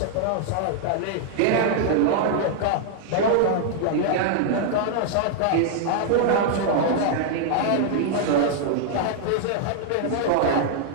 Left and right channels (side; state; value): both; different; correlation -0.01